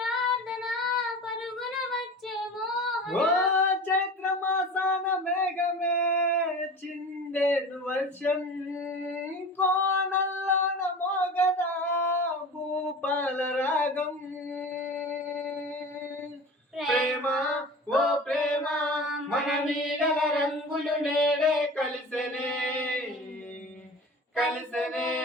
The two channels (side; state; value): both; normal; correlation 0.35